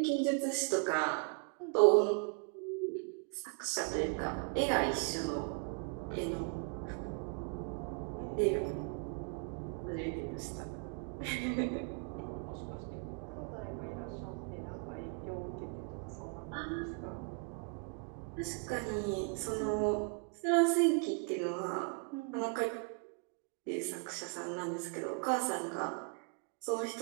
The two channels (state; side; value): quieter; left; 36.5 dB